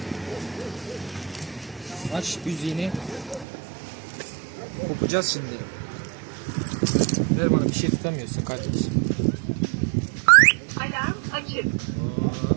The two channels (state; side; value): drops out; left; at 3.5 s